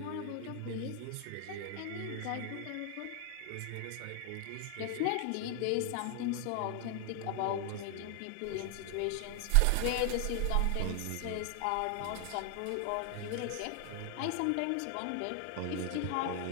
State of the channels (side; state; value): both; different; correlation 0.00